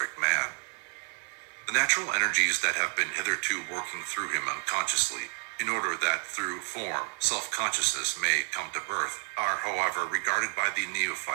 man. The natural energies that have been hitherto working through him unconsciously, in order that through form self-consciousness may come to birth, are, however, regarded by the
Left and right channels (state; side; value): quieter; left; 39.0 dB